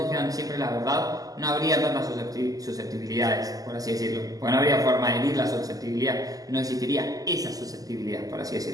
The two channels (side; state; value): left; late; 0.17 ms